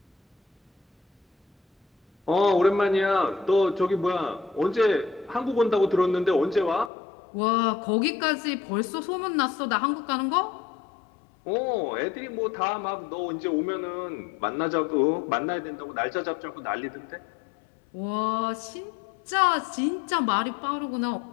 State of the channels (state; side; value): drops out; right; at 6.9 s